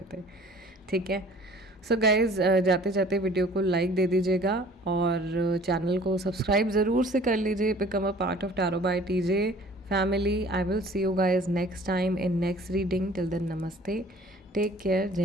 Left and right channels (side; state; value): both; normal; correlation 0.50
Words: थे. ठीक है, सो गाइज़, जाते जाते वीडियो को लाइक दे दीजिएगा और चैनल को सब्सक्राइब ज़रूर से कर लीजिए. बिकम अ पार्ट ऑफ टैरो बाय टीजे फैमिली. आई विल सी यू गाइज नेक्स्ट टाइम इन नेक्स्ट रीडिंग. टिल देन, नमस्ते, टेक केयर,